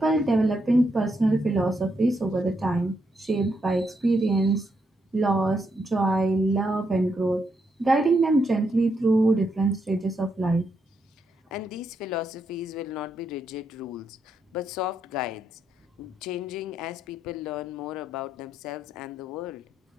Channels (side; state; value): both; normal; correlation 0.79